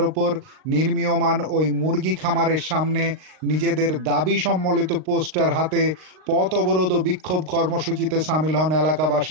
ওপর নির্মীয়মাণ ওই মুরগি খামারের সামনে নিজেদের দাবি সম্বলিত পোস্টার হাতে পথ অবরোধ ও বিক্ষোভ কর্মসূচিতে সামিল হন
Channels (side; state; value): left; late; 39 ms